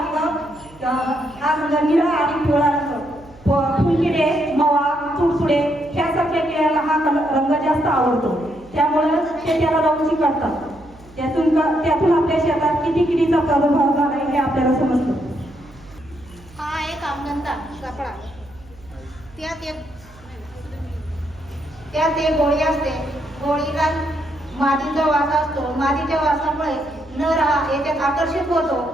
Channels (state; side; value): noise; right; hum, 24 dB below the sound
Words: रंग निळा आणि पिवळा रंग. फुलकिडे, मवा, तुडतुडे ह्यासारख्या किड्याला हा रंग जास्त आवडतो. त्यामुळे शेताला जाऊन चिकटतात. त्यातून आपल्या शेतात किती किडीचा प्रादुर्भाव झाला हे आपल्याला समजतं. हा एक आमदंता कपडा, त्यात एक गोळी असते. गोळीला मातीचा वास असतो. मातीच्या वासामुळे नर हा याच्यात आकर्षित होतो